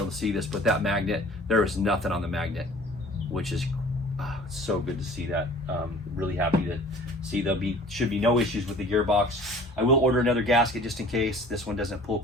to see this, but that magnet, there is nothing on the magnet, which is so good to see that. Really happy to see should be no issues with the gearbox. I will order another gasket just in case this one doesn't pull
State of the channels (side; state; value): both; normal; correlation 0.48